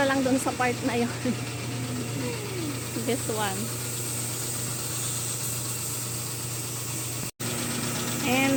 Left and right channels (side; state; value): both; identical; correlation 1.00